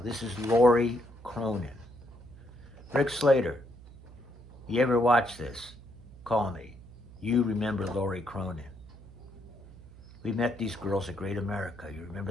this is Lori Cronin. Rick Slater, you ever watch this? Call me. You remember Lori Cronin. We met these girls at Great America. You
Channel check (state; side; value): noise; right; hum, 19 dB below the sound